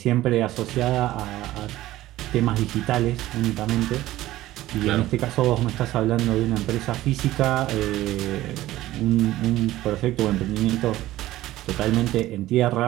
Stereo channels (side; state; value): left; quieter; 15.6 dB